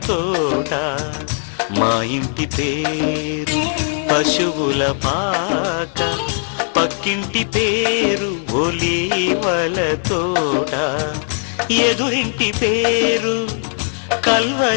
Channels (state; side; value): silent; right; 56 dB below the other